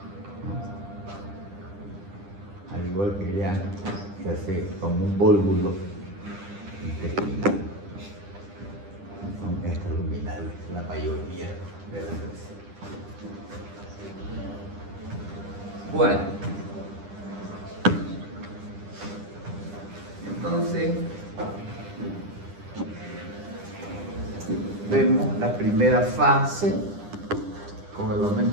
Al igual que ya se hace como un vólvulo intestinal. Son extraluminales, la mayoría de las veces. Bueno, entonces vemos la primera fase con el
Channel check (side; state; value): left; late; 10 ms